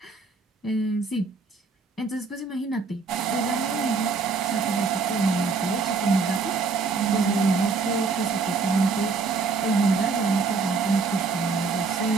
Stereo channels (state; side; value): quieter; left; 4.5 dB